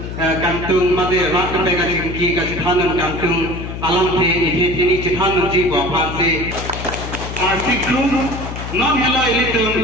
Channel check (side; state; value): left; noise; hum, 8 dB below the sound